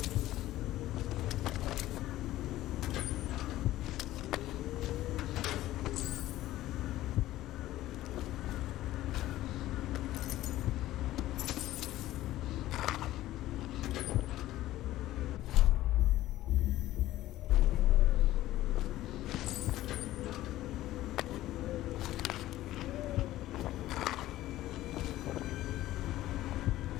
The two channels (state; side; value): quieter; right; 15.2 dB